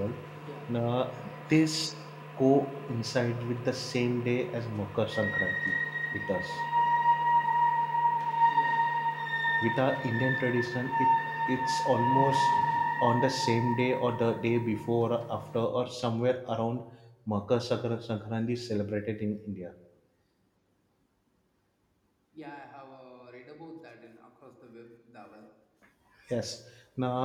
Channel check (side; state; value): both; identical; correlation 1.00